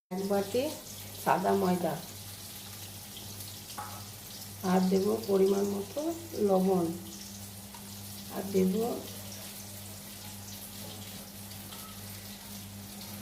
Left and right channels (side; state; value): both; identical; correlation 1.00